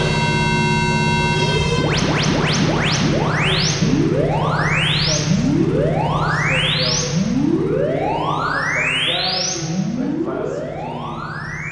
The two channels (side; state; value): both; identical; correlation 1.00